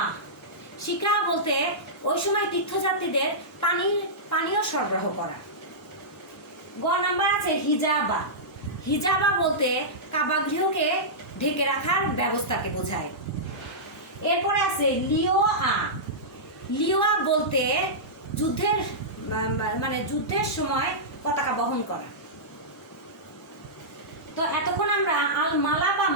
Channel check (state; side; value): normal; both; correlation -0.14